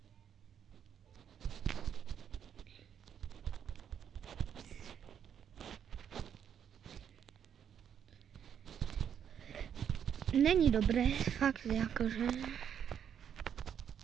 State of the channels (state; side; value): quieter; left; 8.6 dB